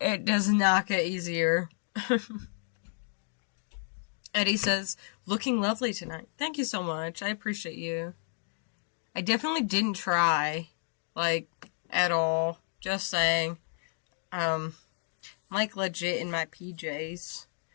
does not get easier. Eddie says, looking lovely tonight. Thank you so much. I appreciate you. I definitely didn't try, like, at all. Just saying. Like, legit in my PJs.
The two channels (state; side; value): silent; right; digital silence